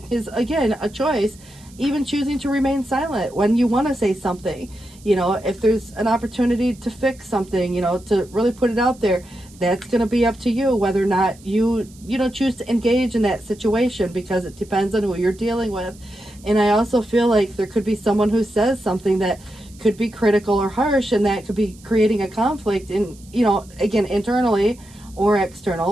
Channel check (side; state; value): right; noise; hiss, 25 dB below the sound